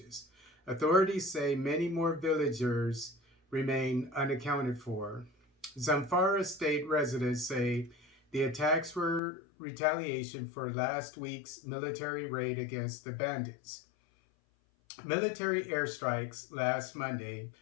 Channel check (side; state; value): right; drops out; at 9.2 s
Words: Authorities say many more villagers remain unaccounted for. Zamfara state residents say the attacks were retaliation for last week's military raid against the bandits. Military airstrikes last Monday